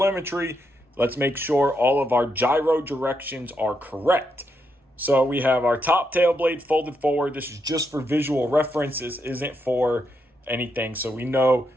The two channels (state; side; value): normal; both; correlation 0.81